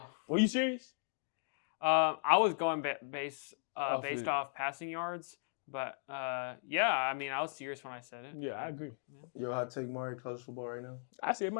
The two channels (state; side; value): silent; right; digital silence